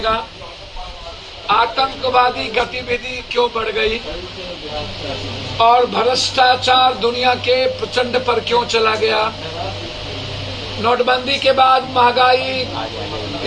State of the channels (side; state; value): both; identical; correlation 1.00